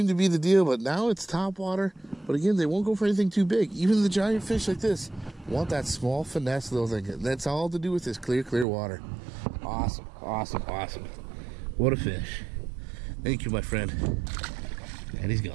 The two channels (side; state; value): left; drops out; at 8.7 s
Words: to be the deal, but now it's top water. But again, they won't go for anything too big. Even the giant fish like this want that small finesse little thing. That's all to do with this clear water. Awesome, awesome, awesome. What a fish. Thank you, my friend. And he's